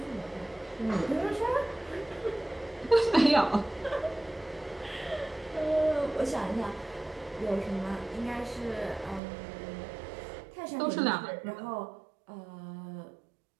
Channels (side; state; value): left; drops out; at 9.2 s